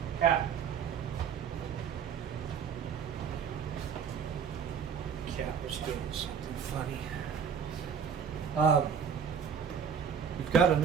Cat. Cat was doing something funny. We've got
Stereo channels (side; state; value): left; quieter; 7.1 dB